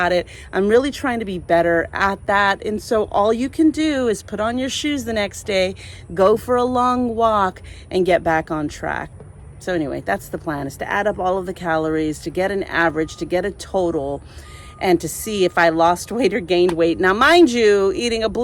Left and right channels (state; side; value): identical; both; correlation 1.00